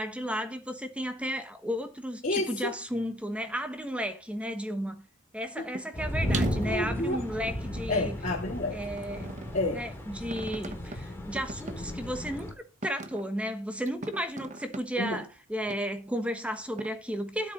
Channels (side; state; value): both; normal; correlation 0.61